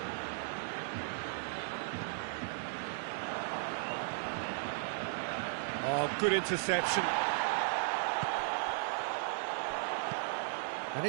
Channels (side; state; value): left; silent; digital silence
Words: Oh, good interception. And